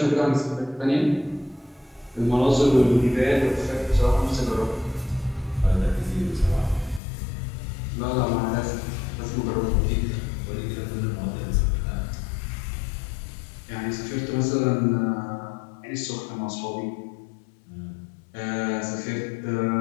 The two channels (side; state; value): right; drops out; at 7.0 s